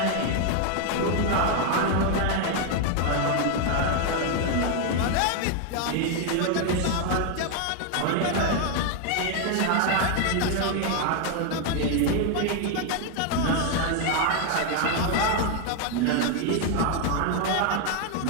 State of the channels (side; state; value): both; different; correlation 0.01